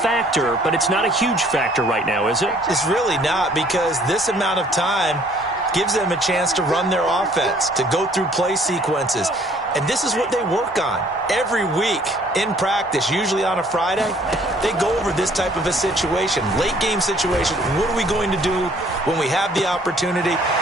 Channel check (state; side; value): normal; both; correlation 0.59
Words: but it's not a huge factor right now, is it? It's really not, because this amount of time gives them a chance to run their offense, to go through play sequences. And this is what they work on every week in practice, usually on a Friday. They go over this type of a situation, late game situation. What are we going to do when we have the opportunity?